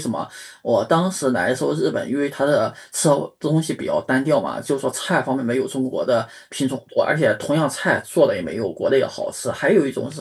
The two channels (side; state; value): both; identical; correlation 1.00